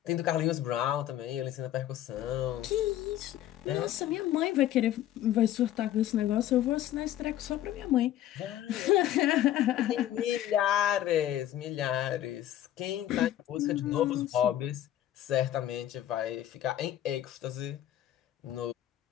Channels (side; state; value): right; quieter; 12.4 dB